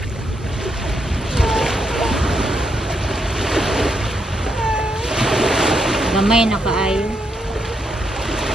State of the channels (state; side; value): normal; both; correlation 0.78